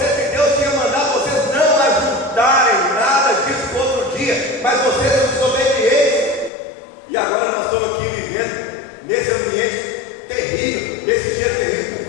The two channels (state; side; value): drops out; right; at 6.5 s